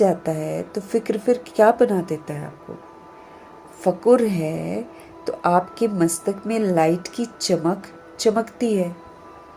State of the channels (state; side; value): identical; both; correlation 1.00